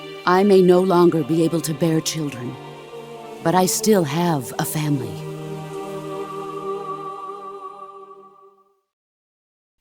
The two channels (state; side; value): identical; both; correlation 1.00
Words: I may no longer be able to bear children, but I still have a family.